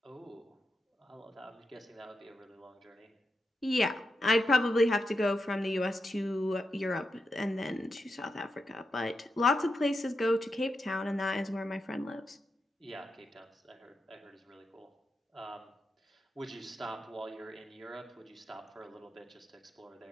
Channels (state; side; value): normal; both; correlation 0.87